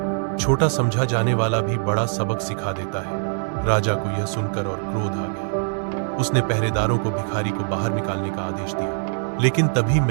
छोटा समझा जाने वाला भी बड़ा सबक सिखा देता है। राजा को यह सुनकर और क्रोध आ गया। उसने पहरेदारों को भिखारी को बाहर निकालने का आदेश दिया, लेकिन तभी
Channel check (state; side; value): silent; left; digital silence